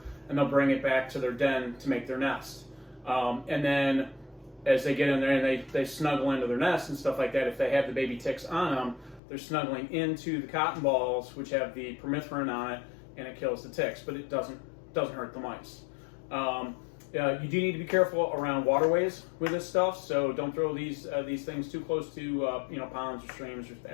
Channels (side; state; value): right; drops out; at 9.2 s